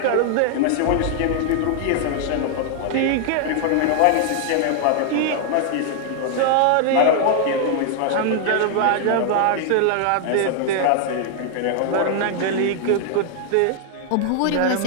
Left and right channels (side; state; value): both; different; correlation 0.00